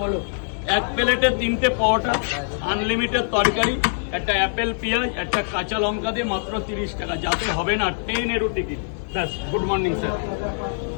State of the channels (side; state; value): right; silent; 58 dB below the other